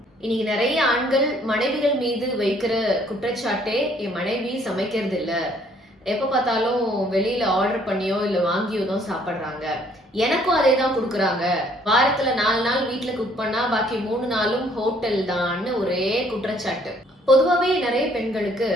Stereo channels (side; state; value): both; normal; correlation 0.62